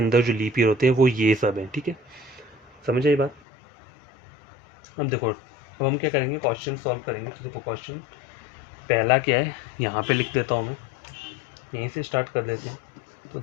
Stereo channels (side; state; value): right; drops out; at 3.4 s